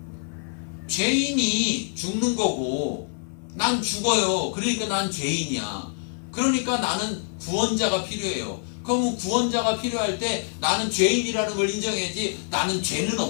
죄인이 죽는 거고 난 죽어요. 그러니까 난 죄인이야. 그러니까 나는 구원자가 필요해요. 그럼 구원자가 필요할 때 나는 죄인이라는 걸 인정해야지. 나는 죄는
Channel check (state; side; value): silent; right; 61 dB below the other